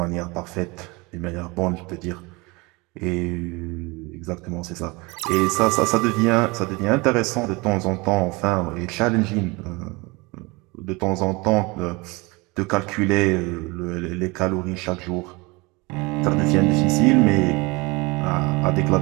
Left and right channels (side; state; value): left; quieter; 25.4 dB